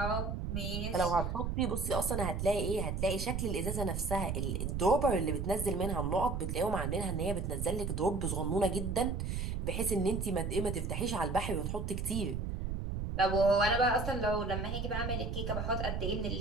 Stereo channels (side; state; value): right; noise; rumble, 2 dB below the sound